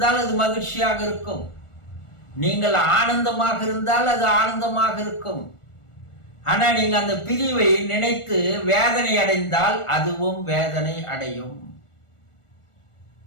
அது மகிழ்ச்சியாக இருக்கும். நீங்கள் ஆனந்தமாக இருந்தால் அது ஆனந்தமாக இருக்கும். ஆனா நீங்க அந்த பிரிவை நினைத்து வேதனை அடைந்தால் அதுவும் வேதனை அடையும்.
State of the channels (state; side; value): late; right; 1.4 ms